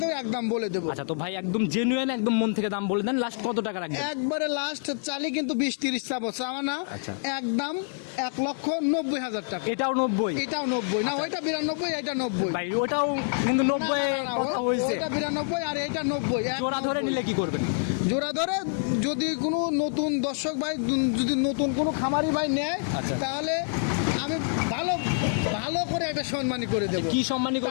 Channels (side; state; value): right; silent; digital silence